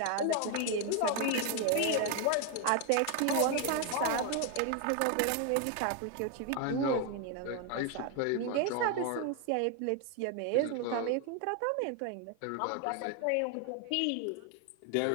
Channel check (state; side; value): different; both; correlation 0.01